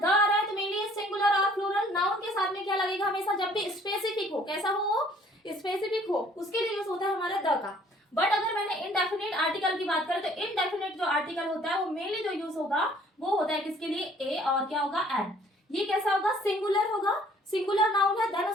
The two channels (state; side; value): normal; both; correlation 0.58